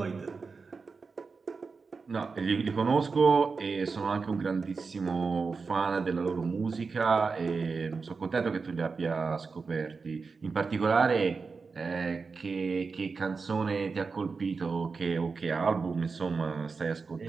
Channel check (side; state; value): left; quieter; 4.7 dB